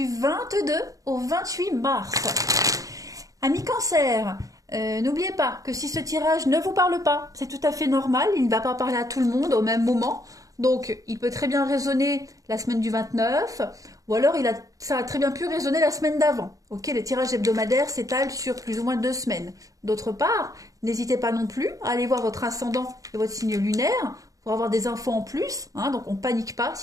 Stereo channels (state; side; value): late; left; 0.17 ms